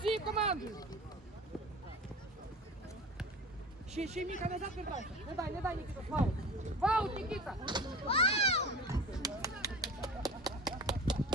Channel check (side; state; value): both; normal; correlation 0.34